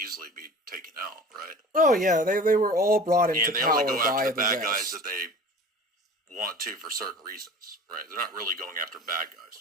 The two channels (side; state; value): both; normal; correlation 0.40